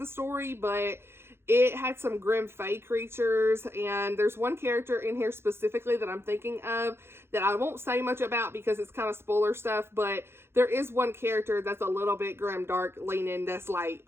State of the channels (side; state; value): left; late; 0.12 ms